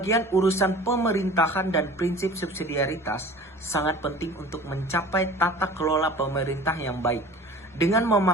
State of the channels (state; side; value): normal; both; correlation 0.42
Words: urusan pemerintahan dan prinsip subsidiaritas sangat penting untuk mencapai tata kelola pemerintah yang baik. Dengan